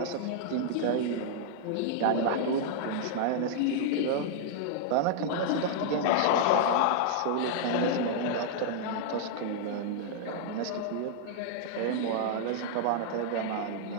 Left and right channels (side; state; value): both; different; correlation -0.01